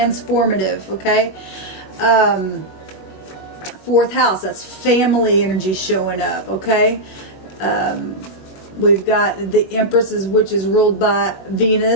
Okay, 4th house, that's family energy showing up. Okay, we've got the Empresses, which is ruled by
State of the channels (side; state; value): right; late; 21 ms